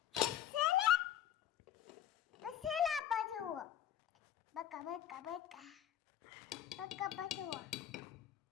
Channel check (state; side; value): quieter; right; 10.7 dB